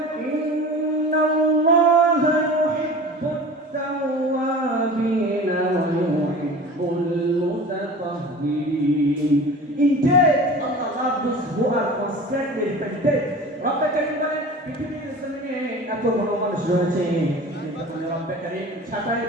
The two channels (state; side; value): normal; both; correlation 0.37